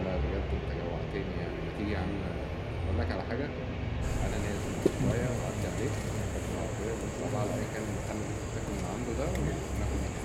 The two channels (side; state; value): both; identical; correlation 1.00